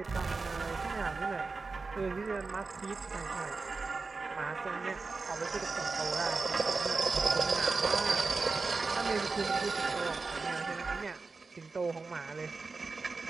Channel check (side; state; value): left; quieter; 4.1 dB